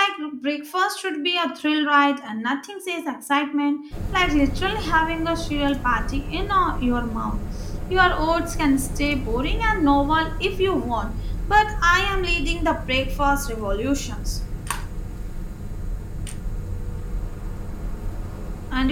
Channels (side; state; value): both; identical; correlation 1.00